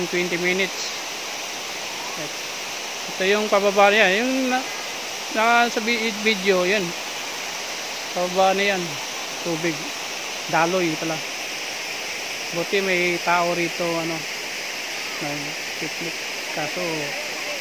20 minutes. Ito yung pababa niya, yung nasa video, yan. Pababa na yan, tubig. Daloy pala. Buti may tao rito, ano, nag-picnic. Kaso,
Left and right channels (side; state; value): both; identical; correlation 1.00